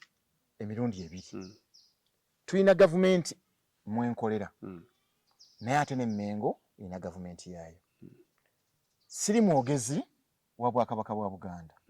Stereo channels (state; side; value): identical; both; correlation 1.00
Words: emirundi ebiri. Tulina gavumenti mwenkolera naye ate n'Emmengo erina gavumenti yaayo. Siri mwogezi wa bwakabaka bwa Buganda